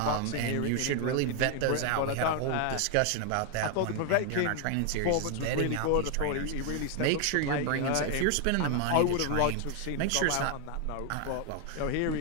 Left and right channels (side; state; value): both; different; correlation 0.00